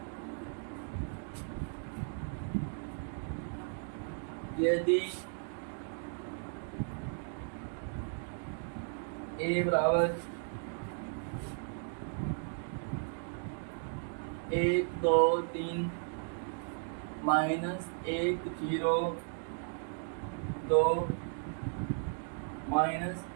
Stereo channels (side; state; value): left; silent; 54 dB below the other